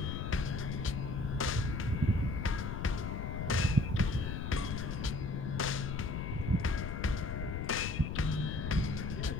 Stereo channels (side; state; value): left; noise; rumble, 3 dB below the sound